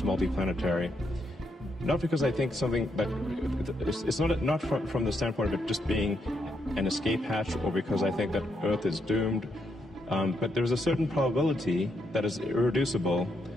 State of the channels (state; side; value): normal; both; correlation 0.78